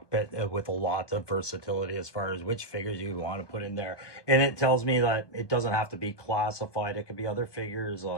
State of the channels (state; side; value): late; right; 1.2 ms